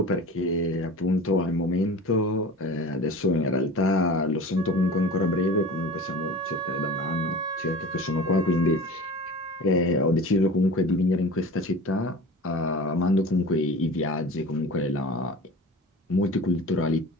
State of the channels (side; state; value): both; normal; correlation 0.36